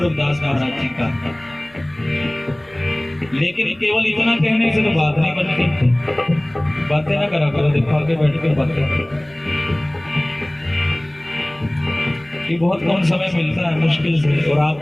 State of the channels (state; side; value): noise; left; hum, 28 dB below the sound